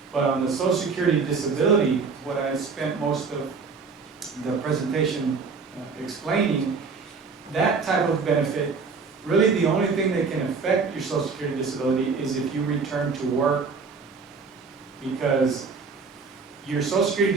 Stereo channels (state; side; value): quieter; left; 4.9 dB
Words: But on the Social Security disability, what I spent most of the presentation explaining, that type of benefit, really the only thing that can affect your Social Security disability is if you return to work, because your Social